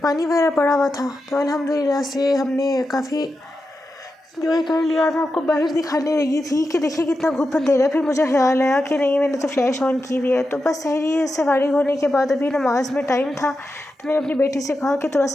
पानी वगैरह पड़ा हुआ था। तो अल्हम्दुलिल्लाह से हमने काफ़ी एंजॉय कर लिया। मैं आपको बाहर दिखाने लगी थी कि देखिए कितना घुप अंधेरा। फिर मुझे ख्याल आया कि नहीं, मैंने तो फ्लैश ऑन की हुई है। तो बस सहरी से फारिग होने के बाद अभी नमाज में टाइम था तो मैंने अपनी बेटी से कहा कि थोड़ा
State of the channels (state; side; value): normal; both; correlation 0.89